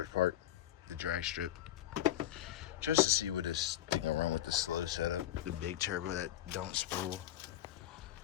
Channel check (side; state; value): right; quieter; 12.6 dB